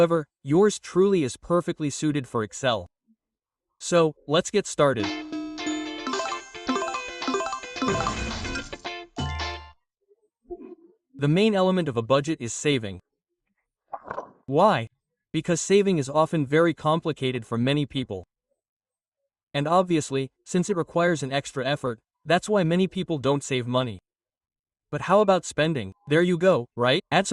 yours truly is perfectly suited for Excel. So, let's get started. The main element of a budget is saving. Why? Because saving is often very complicated for many people. And obviously, since it requires an extra effort, that's why many people don't save money. But how about spending? There you go, right? Add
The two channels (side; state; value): both; identical; correlation 1.00